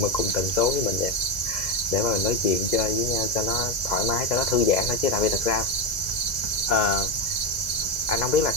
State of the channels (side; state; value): right; late; 2.0 ms